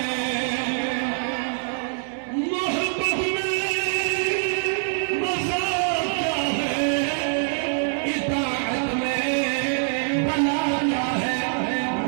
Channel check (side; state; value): left; silent; 62 dB below the other